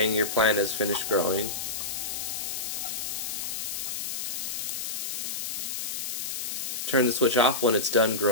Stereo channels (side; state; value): left; noise; hiss, 3 dB below the sound